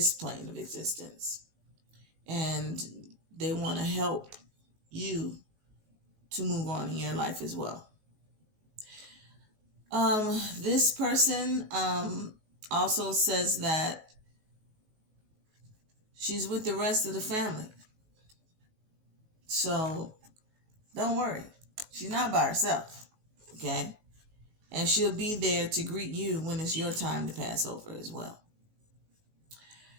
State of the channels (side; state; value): left; late; 19 ms